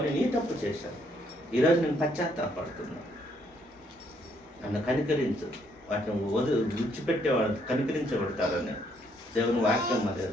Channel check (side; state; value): both; normal; correlation 0.70